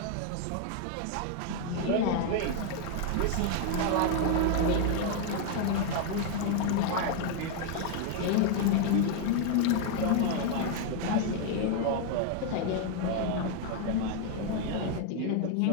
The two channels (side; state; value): both; different; correlation 0.00